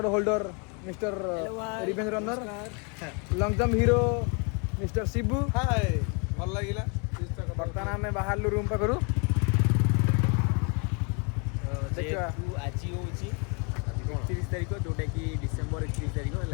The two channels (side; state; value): right; quieter; 35.4 dB